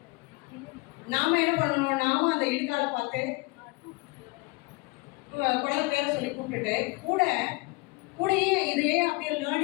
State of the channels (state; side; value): quieter; right; 25.8 dB